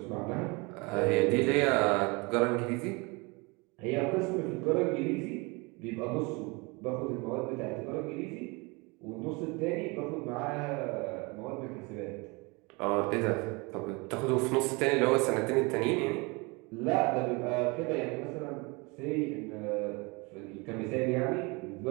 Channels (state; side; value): quieter; left; 27.6 dB